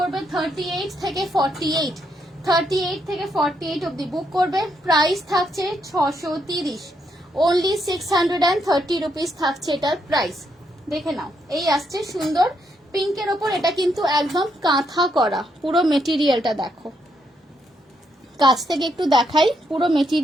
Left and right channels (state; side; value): normal; both; correlation 0.77